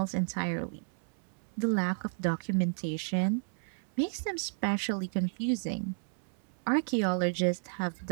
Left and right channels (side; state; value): left; silent; 56 dB below the other